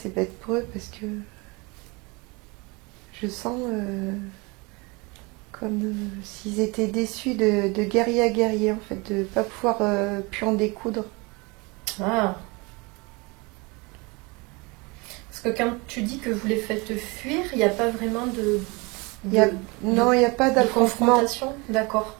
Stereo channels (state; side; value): quieter; left; 27.2 dB